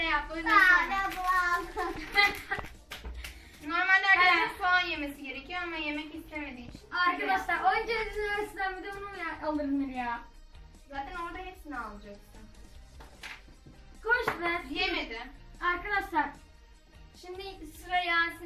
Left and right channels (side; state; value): both; identical; correlation 1.00